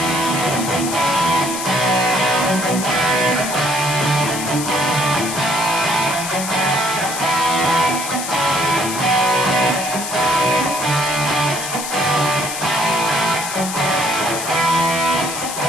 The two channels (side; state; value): left; noise; hiss, 6 dB below the sound